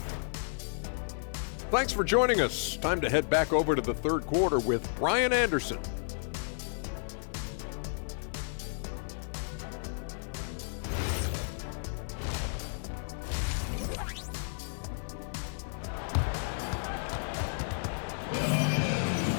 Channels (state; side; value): silent; right; 56 dB below the other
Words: Thanks for joining us. Time to head back over to the third quarter with Brian Anderson.